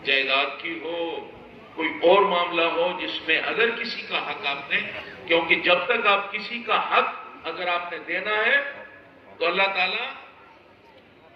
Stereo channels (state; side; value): identical; both; correlation 1.00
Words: جائیداد کی ہو، کوئی اور معاملہ ہو جس میں اگر کسی کا حق آپ نے، کیونکہ جب تک آپ کسی کا حق اگر آپ نے دینا ہے تو اللہ تعالیٰ